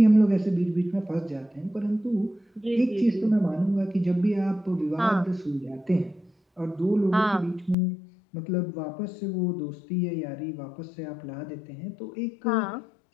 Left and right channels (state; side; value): drops out; right; at 7.8 s